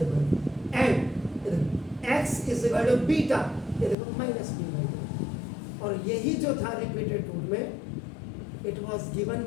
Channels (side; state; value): right; drops out; at 4.0 s